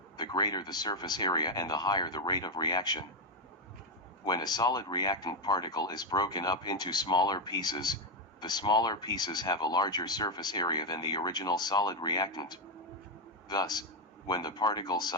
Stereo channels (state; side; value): normal; both; correlation 0.06